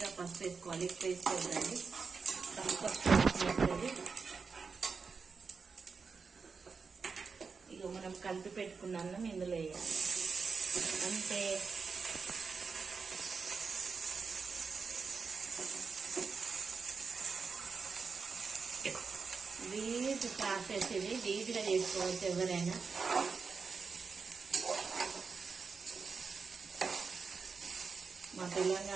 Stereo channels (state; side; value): quieter; left; 5.1 dB